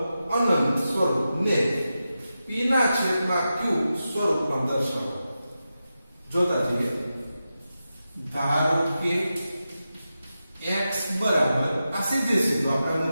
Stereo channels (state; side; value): inverted; both; correlation -0.91